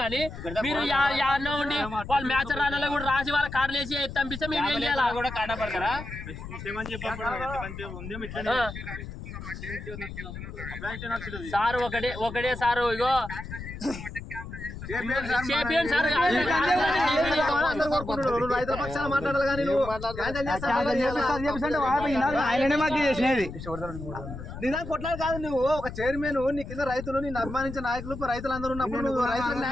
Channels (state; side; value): noise; left; rumble, 10 dB below the sound